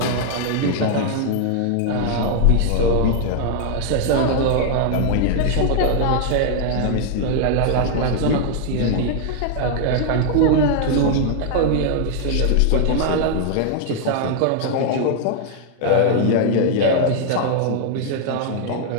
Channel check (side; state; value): both; different; correlation -0.01